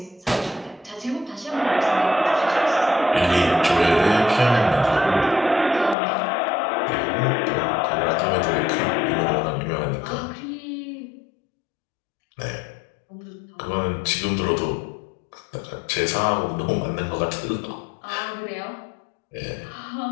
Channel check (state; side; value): drops out; right; at 6.0 s